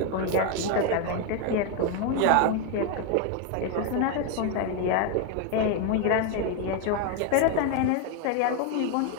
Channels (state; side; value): different; both; correlation 0.01